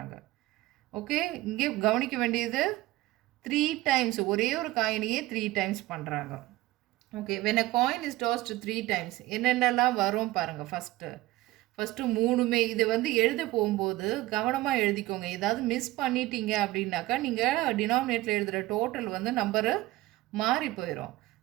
ஓகே, இங்கே கவனிக்க வேண்டியது 3 டைம்ஸ், ஒரே ஒரு காயினையே 3 டைம்ஸ் பண்ணுறாங்க. Okay, when a coin is tossed 3 times என்னென்னலாம் வரும் பாருங்கள். ஃபஸ்ட்டு 3மே இது வந்து எழுத போகும்போது கவனமாக எழுதிக்கோங்க. ஏதாவது மிஸ் பண்ணிட்டீங்க அப்படின்னாக்கா நீங்கள் டினாமினேட்டில் எழுதுகிற டோட்டல் வந்து நம்பரு மாறி போயிடும்.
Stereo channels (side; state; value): left; quieter; 18.0 dB